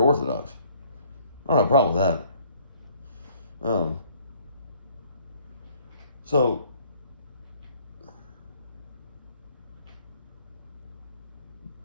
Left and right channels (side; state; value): both; inverted; correlation -0.59